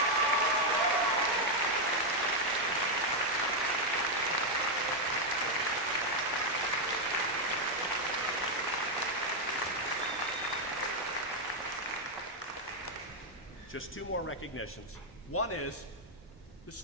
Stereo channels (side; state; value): both; normal; correlation 0.01